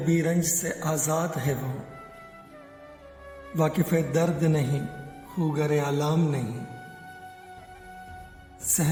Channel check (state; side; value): identical; both; correlation 1.00